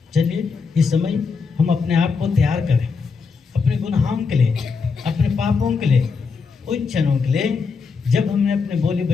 चलिए इस समय हम अपने आप को तैयार करें अपने गुनाहों के लिए, अपने पापों के लिए, उन क्षणों के लिए जब हमने अपने बोली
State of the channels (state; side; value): quieter; right; 5.0 dB